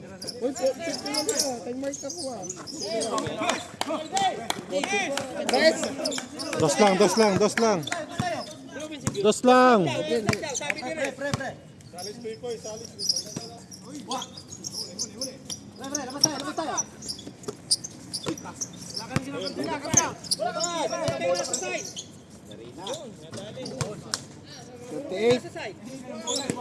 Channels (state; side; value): identical; both; correlation 1.00